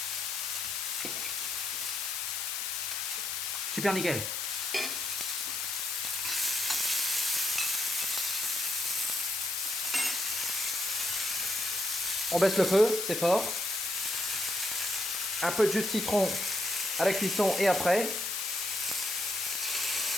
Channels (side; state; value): left; noise; hiss, 2 dB below the sound